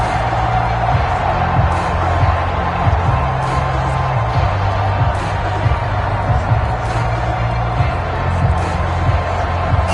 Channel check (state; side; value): identical; both; correlation 1.00